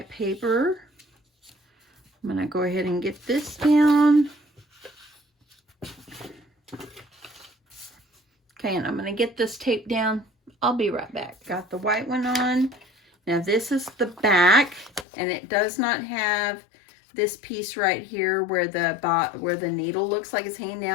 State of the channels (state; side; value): drops out; right; at 15.1 s